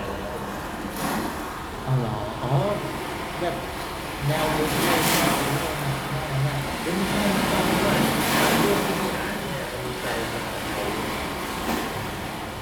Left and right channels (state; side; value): identical; both; correlation 1.00